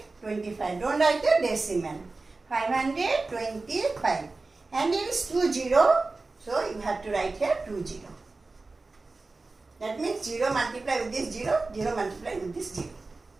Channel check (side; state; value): left; quieter; 3.6 dB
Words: Don't write the decimal. 525. And it is 20. So you have to write here 20. That means 0 multiplied with this 0, 0 multiplied with this 0.